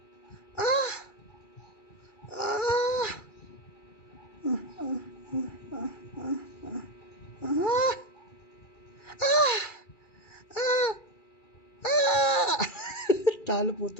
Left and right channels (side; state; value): right; late; 2.3 ms